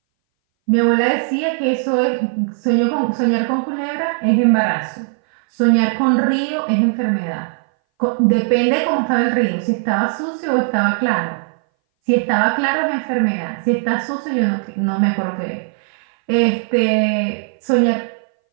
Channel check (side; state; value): left; silent; 61 dB below the other